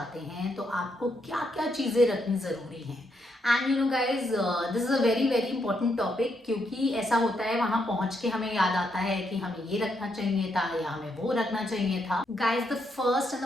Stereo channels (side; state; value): both; normal; correlation 0.78